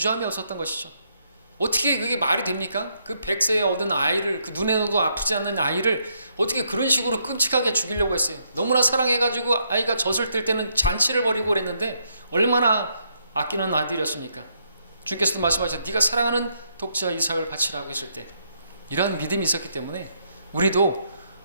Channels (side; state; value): both; inverted; correlation -0.75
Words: 없었던 것이죠. 어떻게 그게 말이 됩니까? 그 100세에 얻은 아이를, 그 눈에도 아프지 않는 아이를 어떻게 그런 식으로 끔찍하게 죽이려고 했어요. 너무나 사랑해가지고 아이가 젖을 뗄 때는 잔치를 벌이고 그랬는데 얼마나 아끼는 아들이었습니까? 주께서도 말씀하셨죠. 네가 사랑하는 독자 이삭을 바치라고 했을 때 이러한 믿음이 있었기 때문에 우리도